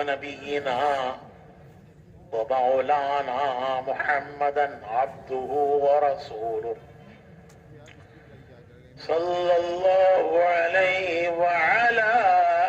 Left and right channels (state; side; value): identical; both; correlation 1.00